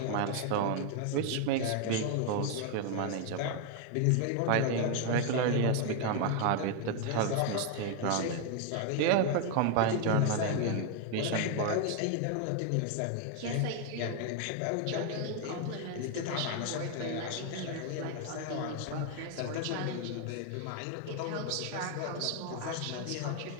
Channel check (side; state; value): both; different; correlation 0.01